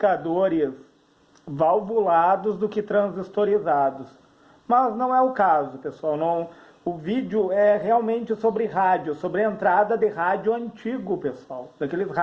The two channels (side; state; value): both; identical; correlation 1.00